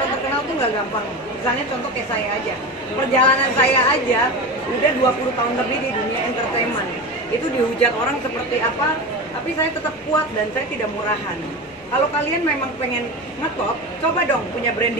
terkenal tuh nggak gampang. Misalnya contoh kayak saya aja, perjalanan saya aja udah 20 tahun lebih di dunia entertainment. Itu dihujat orang seperti apa, tapi saya tetap kuat dan saya tidak murahan. Kalau kalian memang pengen ngetop, coba dong punya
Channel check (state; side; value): noise; left; rumble, 30 dB below the sound